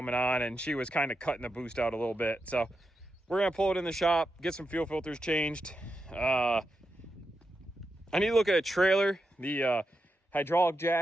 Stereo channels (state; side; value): normal; both; correlation 0.86